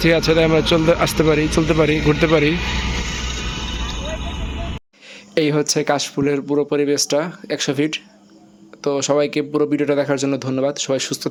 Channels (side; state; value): both; identical; correlation 1.00